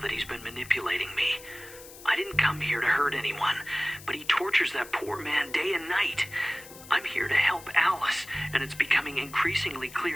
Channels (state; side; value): noise; left; hiss, 17 dB below the sound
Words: he's been manipulating me. I didn't come here to hurt anyone, but he tortures that poor man day and night. I'm here to help Alice, and it's becoming increasingly